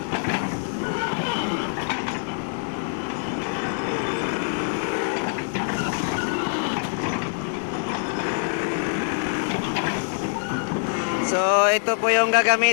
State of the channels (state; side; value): silent; right; 56 dB below the other